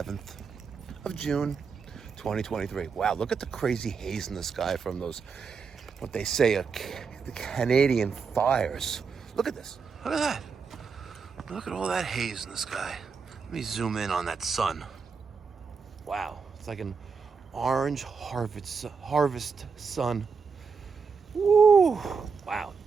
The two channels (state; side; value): quieter; left; 5.5 dB